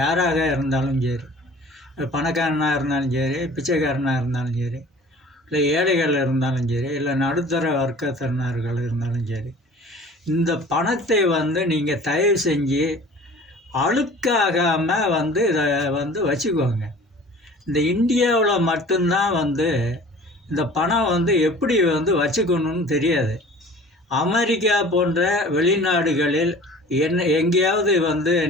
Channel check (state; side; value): normal; both; correlation 0.45